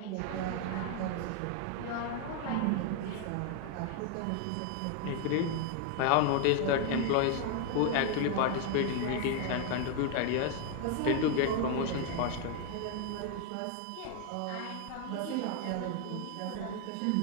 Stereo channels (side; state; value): both; different; correlation 0.01